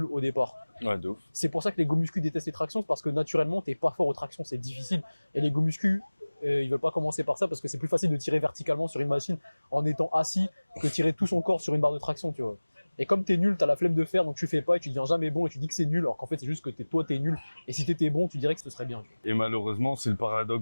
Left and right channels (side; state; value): both; inverted; correlation -1.00